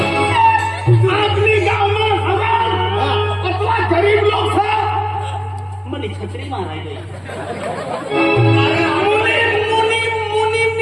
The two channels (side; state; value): both; identical; correlation 1.00